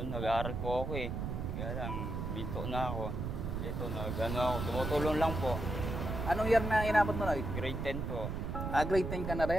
nag-aaral po ako eh. Kaya lang, binto na ako. Ito, ako, tumutulong lang po. Anong year na inabot mo, Noy? Grade 10 po. Grade 10 ka na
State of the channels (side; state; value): right; noise; rumble, 3 dB below the sound